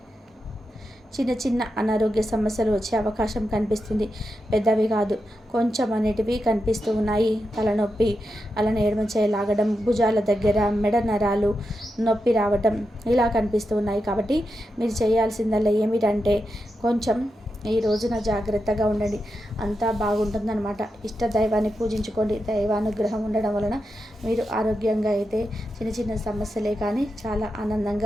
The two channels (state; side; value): normal; both; correlation 0.88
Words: చిన్న చిన్న అనారోగ్య సమస్యలు వచ్చే అవకాశం కనిపిస్తుంది. పెద్దవి కాదు, కొంచెం అనేటివి కనిపిస్తూ ఉన్నాయి. తలనొప్పి, అలానే ఎడమ చేయి లాగడం, భుజాల దగ్గర మెడ నరాలు నొప్పి రావటం ఇలా కనిపిస్తూ ఉన్నాయి. కాబట్టి మీరు చేయాల్సిందల్లా ఏమిటంటే కొంచెం ఈ రోజున జాగ్రత్తగా ఉండండి, అంతా బాగుంటుందన్నమాట. ఇష్ట దైవాన్ని పూజించుకోండి. దైవానుగ్రహం ఉండడం వలన మీరు ఆరోగ్యంగా అయితే చిన్న చిన్న సమస్యలే కానీ చాలా